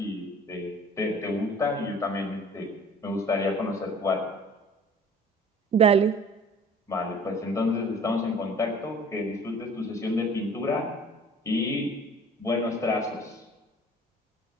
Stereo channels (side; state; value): both; normal; correlation 0.48